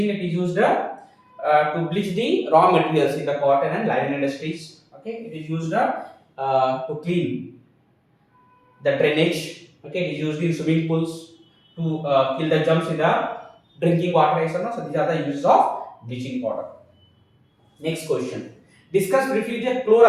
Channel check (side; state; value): both; identical; correlation 1.00